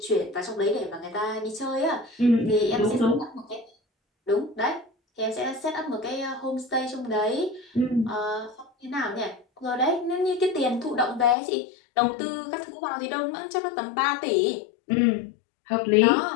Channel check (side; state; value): right; drops out; at 11.4 s